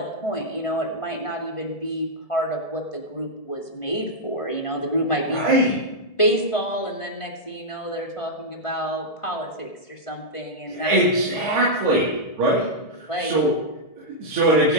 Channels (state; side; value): late; right; 1.7 ms